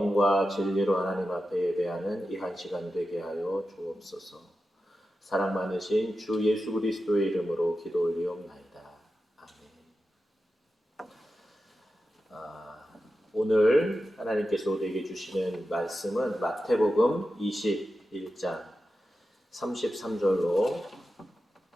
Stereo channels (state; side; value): normal; both; correlation 0.91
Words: 진리로 하나님 앞에 예배하는 이 한 시간 되게 하여 주옵소서. 사랑 많으신 주 예수 그리스도의 이름으로 기도 올리옵나이다. 아멘. 오늘 하나님께서 우리에게 주시는 말씀은 마태복음 21장 33절로